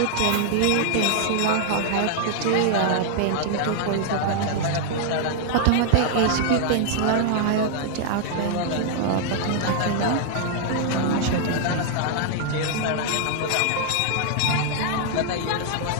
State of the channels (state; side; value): different; both; correlation 0.00